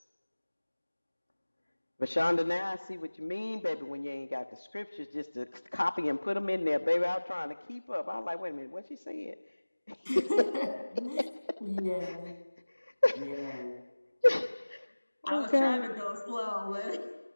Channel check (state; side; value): inverted; both; correlation -1.00